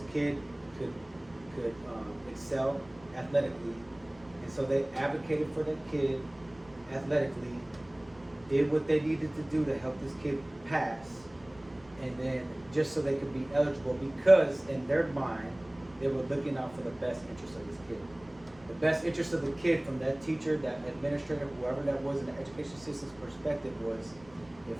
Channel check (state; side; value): noise; right; rumble, 25 dB below the sound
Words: kid could excel athletically, and so they advocated for that kid athletically, did what they needed to do to help this kid pass, and then just so they could be eligible, because in their mind they were looking out for the best interest of this kid. The best interest of the kid from that teacher, that administrator, whoever that was in the education system's perspective was,